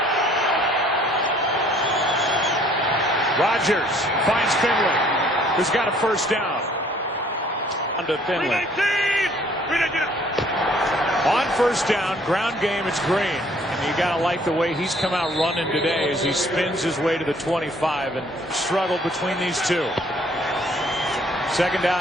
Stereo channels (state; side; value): normal; both; correlation 0.59